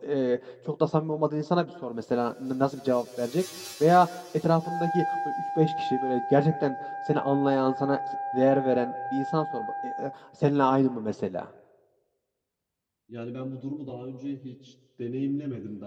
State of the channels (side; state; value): both; identical; correlation 1.00